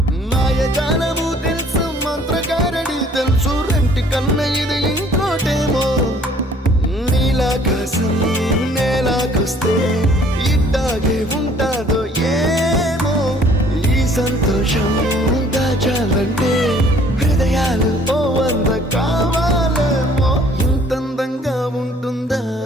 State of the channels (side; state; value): both; normal; correlation 0.57